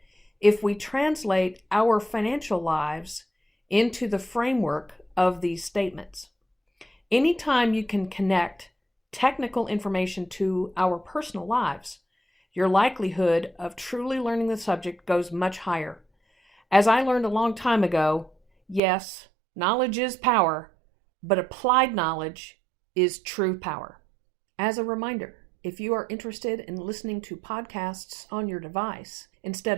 if we translate our financial lives into the framework of these statements. Anytime you can connect technical information to our personal lives, your likelihood of truly learning the subject goes much higher. As I learned a long time ago, yes, knowledge is power, but applied knowledge is true power. As a reminder, if you are interested in listening to podcasts on your device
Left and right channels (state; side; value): drops out; left; at 18.8 s